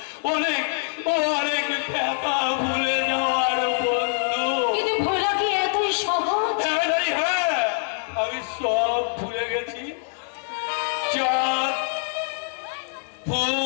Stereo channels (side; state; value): right; silent; digital silence